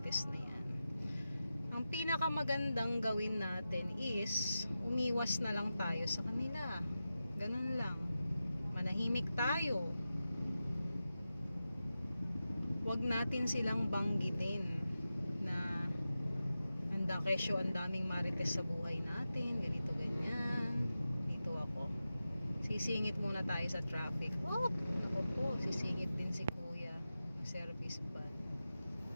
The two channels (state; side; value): inverted; both; correlation -0.92